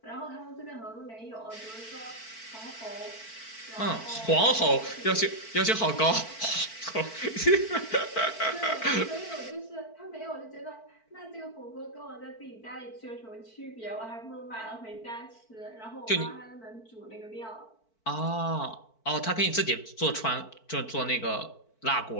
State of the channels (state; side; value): late; right; 4.5 ms